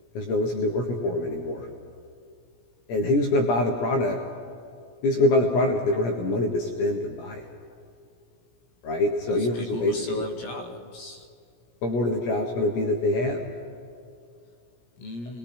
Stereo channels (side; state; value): right; late; 17 ms